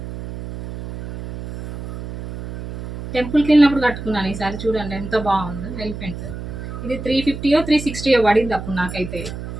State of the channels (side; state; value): right; noise; hum, 9 dB below the sound